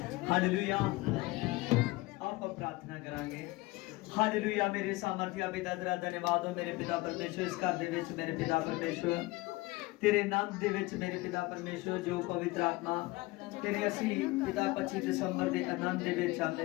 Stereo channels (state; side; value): quieter; right; 21.3 dB